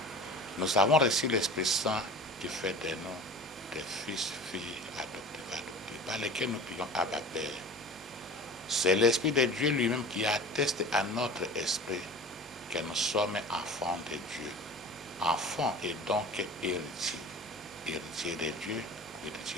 Nous avons reçu l'Esprit Saint qui fait de nous des fils, filles adoptés, par lesquels nous prions Abba Père. C'est l'Esprit de Dieu lui-même qui atteste à notre esprit que nous sommes enfants de Dieu. Enfants et donc héritiers. Héritiers de Dieu,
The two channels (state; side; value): normal; both; correlation 0.38